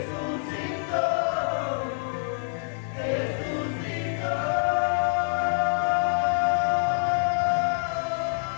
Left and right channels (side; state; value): right; silent; 61 dB below the other